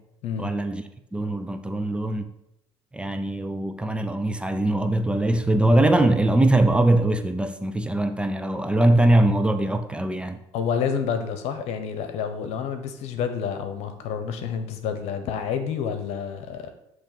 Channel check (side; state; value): both; normal; correlation 0.82